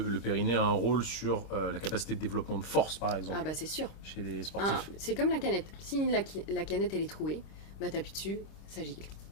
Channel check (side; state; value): right; late; 26 ms